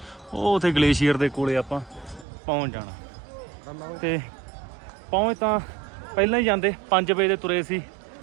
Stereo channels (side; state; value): left; drops out; at 2.2 s